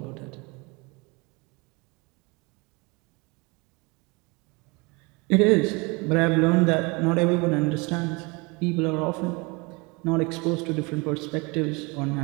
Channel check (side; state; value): left; quieter; 27.5 dB